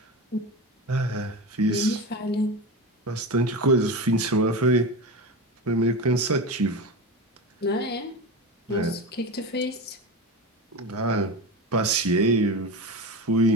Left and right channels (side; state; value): both; normal; correlation 0.23